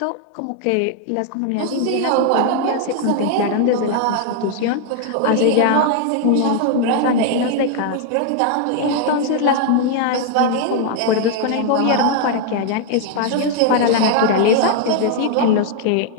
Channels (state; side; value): different; both; correlation 0.00